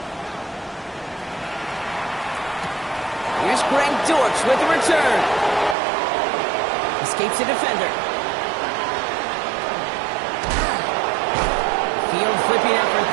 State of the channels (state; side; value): drops out; left; at 5.8 s